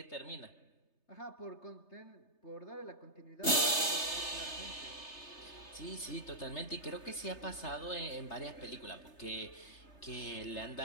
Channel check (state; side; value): late; right; 3.3 ms